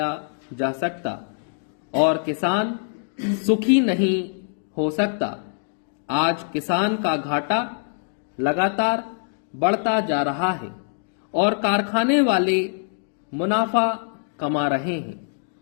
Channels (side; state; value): right; silent; digital silence